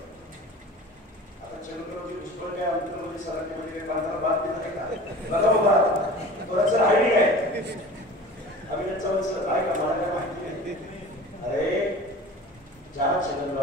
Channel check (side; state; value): both; normal; correlation 0.39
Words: आता छेडूनवरती भुजबळ काय अंतरमध्ये सराटीमध्ये काही बांधायला बात देत आहे का? बघा बाबा थोडंसं आयडी काय अभिनंदन सर आहे का? मला काय माहिती नाही. अरे ज्या